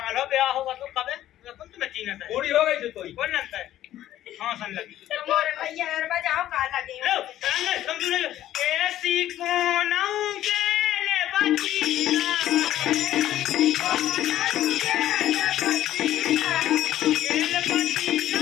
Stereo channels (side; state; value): right; quieter; 13.0 dB